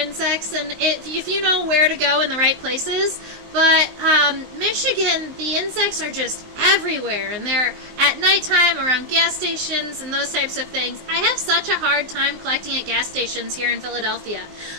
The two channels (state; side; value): late; left; 19 ms